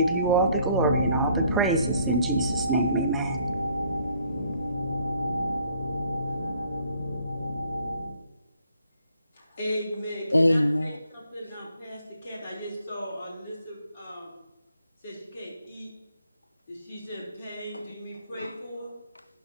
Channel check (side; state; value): both; inverted; correlation -0.63